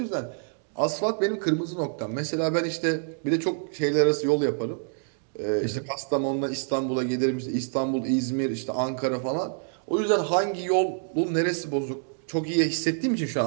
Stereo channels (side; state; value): left; silent; digital silence